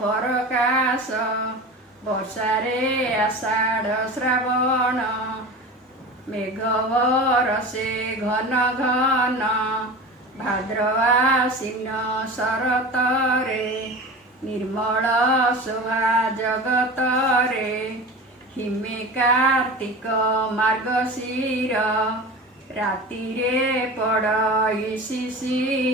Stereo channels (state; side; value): normal; both; correlation 0.32